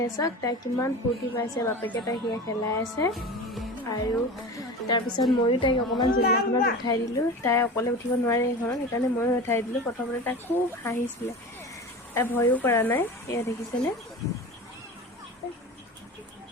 চাওক, তাই কিমান ফূৰ্তি পাইছে, বাপেকে তাইক সেয়া খেলাই আছে। আৰু তাৰপিছত ময়ো তাইক অকণমান জোলনাখনত উঠাই দিলোঁ। তাই অকলে উঠিব নোৱাৰে এইখনত, সেইকাৰণে ময়ো উঠাই দিলোঁ। প্ৰথমতে তাই খুব হাঁহিছিলে, তাই ভয়ো কৰা নাই। এয়া দেখিছেনে?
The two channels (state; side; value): normal; both; correlation 0.32